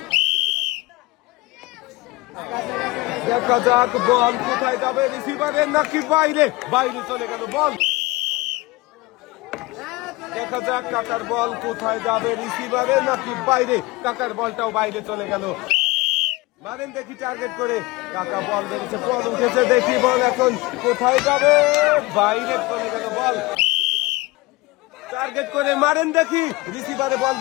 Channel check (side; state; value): right; quieter; 21.5 dB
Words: দেখা যাক বল কোথায় যাবে, রিসিভারে নাকি বাইরে। বাইরে চলে গেল বল। দেখা যাক কাকার বল কোথায় যাবে, রিসিভারে নাকি বাইরে। কাকার বলটাও বাইরে চলে গেল। মারেন দেখি টার্গেট করে। কাকা বল মেরেছে, বল উঠেছে, দেখি বল এখন কোথায় যাবে। বাইরে চলে গেল বল। টার্গেট করে মারেন দেখি রিসিভারে বল